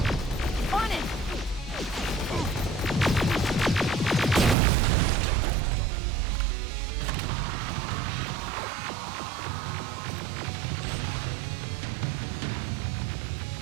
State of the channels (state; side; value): drops out; left; at 4.5 s